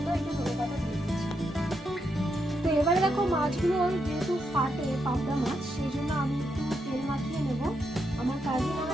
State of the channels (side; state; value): both; normal; correlation 0.81